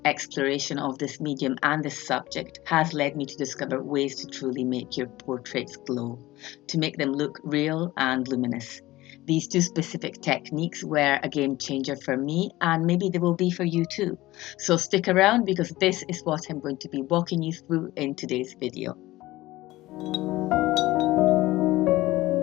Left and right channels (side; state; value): right; quieter; 17.9 dB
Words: exploration of this medium and this subject has led me to discover ways to truly make your portraits glow, to make them look real and luminous. These two specific techniques were a game changer for me, and maybe they will be for you too. So stick around because this is what I'm going to be walking you through in today's video.